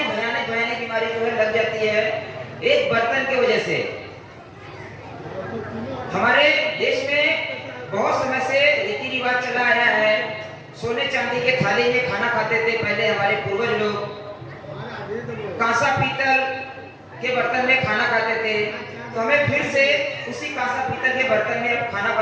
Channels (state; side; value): identical; both; correlation 1.00